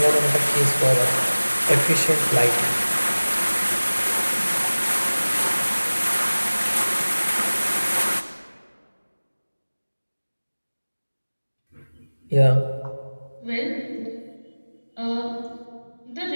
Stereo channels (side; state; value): both; inverted; correlation -1.00